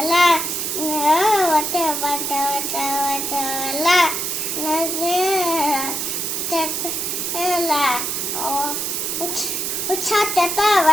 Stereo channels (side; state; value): right; noise; hiss, 1 dB below the sound